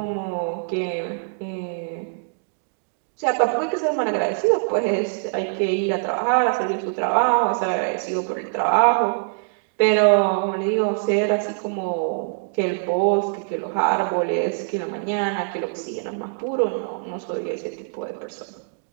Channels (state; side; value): silent; left; digital silence